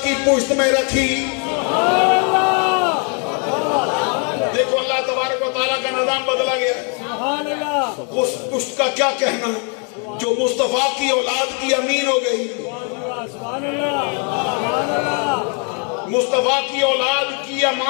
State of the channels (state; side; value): quieter; right; 38.5 dB